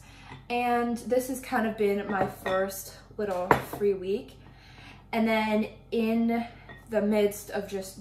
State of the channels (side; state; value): both; identical; correlation 1.00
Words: and this has kind of been my first little free week. And then in the midst of